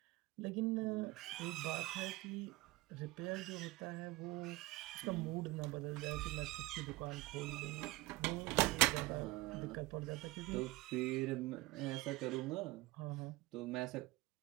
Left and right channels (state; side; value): quieter; left; 20.7 dB